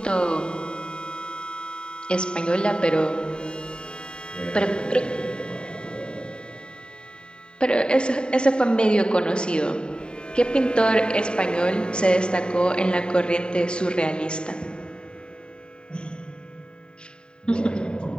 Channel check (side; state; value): right; late; 0.049 ms